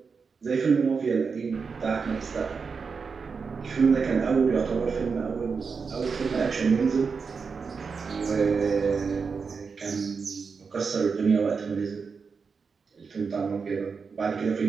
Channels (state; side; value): quieter; left; 5.3 dB